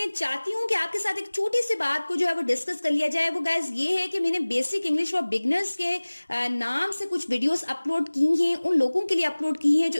चाहती हूँ कि आपके साथ एक छोटी सी बात को जो है वो डिस्कस कर लिया जाए। वो गाइस ये है कि मैंने बेसिक इंग्लिश फॉर बिगनर्स के नाम से कुछ वीडियोस अपलोड की हैं, उन लोगों के लिए अपलोड की हैं जो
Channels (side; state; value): both; inverted; correlation -1.00